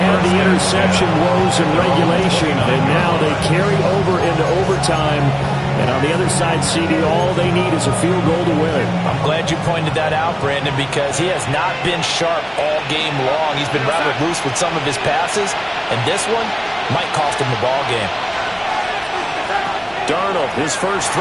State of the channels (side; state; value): both; identical; correlation 1.00